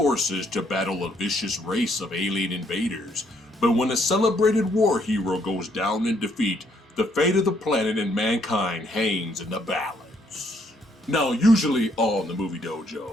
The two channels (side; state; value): both; normal; correlation 0.70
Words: to battle a vicious race of alien invaders. But when a celebrated war hero goes down in defeat, the fate of the planet and mankind hangs in the balance. Now, usually on the Movie